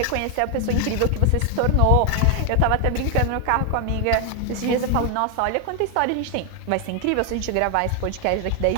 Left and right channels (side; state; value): both; different; correlation 0.01